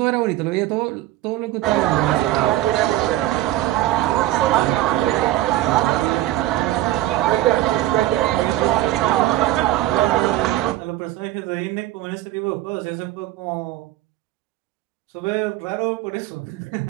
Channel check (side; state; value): left; quieter; 15.1 dB